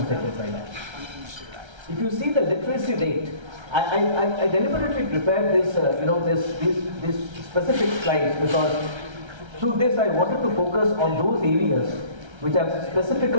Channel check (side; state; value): left; late; 1.3 ms